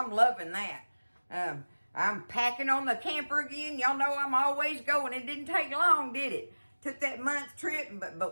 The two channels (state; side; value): inverted; both; correlation -1.00